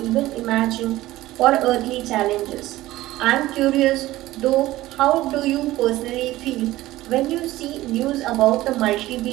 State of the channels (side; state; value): left; quieter; 16.6 dB